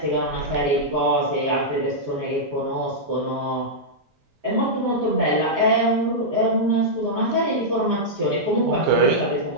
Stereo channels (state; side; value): normal; both; correlation -0.08